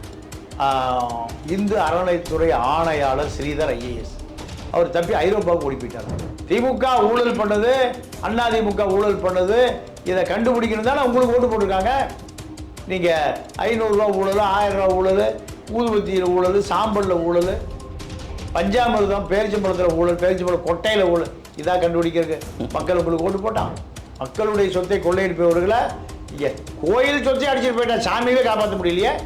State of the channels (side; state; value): both; identical; correlation 1.00